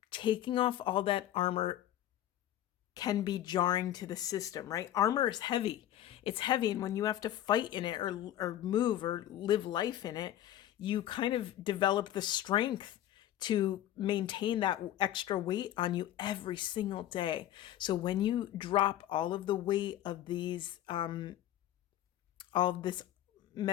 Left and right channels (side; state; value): right; quieter; 12.5 dB